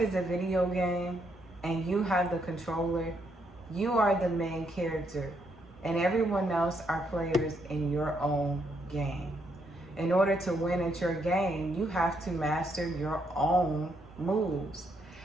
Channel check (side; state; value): both; normal; correlation 0.75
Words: a video game and you have the controller, you are the main character and everyone else are players in your own game. In order to win at your game, you have to master your own moves.